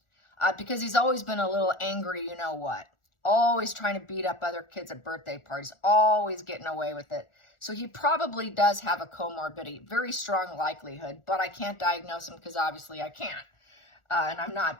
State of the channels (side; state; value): right; late; 1.4 ms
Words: because he's always been a little angry, you know what, always trying to beat up other kids at birthday parties, always getting away with it. So he probably does have a comorbidity, very strong likelihood, but I can't diagnose him because obviously I can't, and I'm